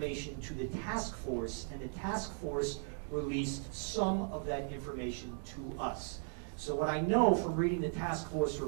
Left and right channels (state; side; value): silent; left; 53 dB below the other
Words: to the task force, and the task force released some of that information to us. So what I know from reading the task force